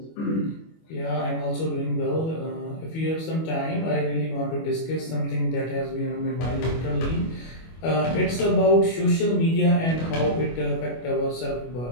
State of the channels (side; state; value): right; late; 25 ms